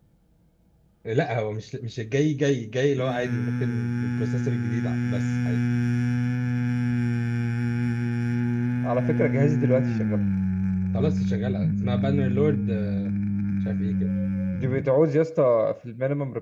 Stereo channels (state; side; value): identical; both; correlation 1.00